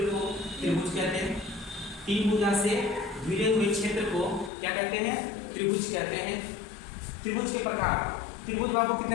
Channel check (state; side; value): drops out; right; at 4.5 s